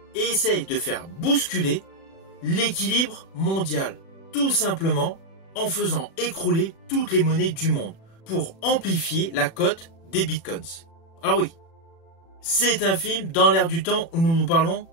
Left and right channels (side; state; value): right; late; 36 ms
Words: et essaye de faire bousculer l'équilibre mondial, tout simplement en faisant écrouler toutes les monnaies du monde pour amplifier la cote des bitcoins. Alors oui, c'est un film dans l'ère du temps où nous parlons